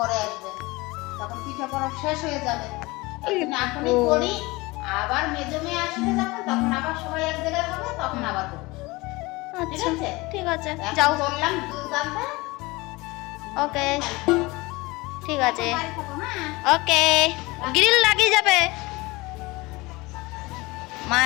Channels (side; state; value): right; quieter; 22.6 dB